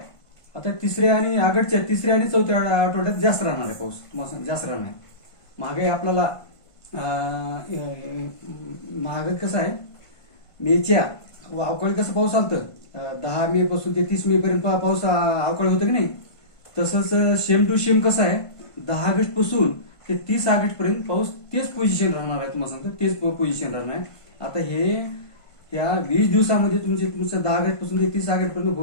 आता तिसऱ्या आणि ऑगस्टच्या तिसऱ्या आणि चौथ्या आठवड्यात जास्त राहणार आहे पाऊस. जास्त राहणार आहे. मागे आपल्याला मागे कसं आहे, मेच्या अवकाळी कसं पाऊस आलतं 10 मे पासून ते 30 मे पर्यंत पाऊस अवकाळी होतं की नाही, तसंच सेम टू सेम कसं आहे 10 ऑगस्ट पासून ते 30 ऑगस्ट पर्यंत पाऊस तेच पोझिशन राहणार आहे. तुम्हाला सांगतो तेच पोझिशन राहणार आहे. आता हे या 20 दिवसामध्ये तुमचं 10 ऑगस्ट पासून ते 30 ऑगस्ट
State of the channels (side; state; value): right; late; 1.5 ms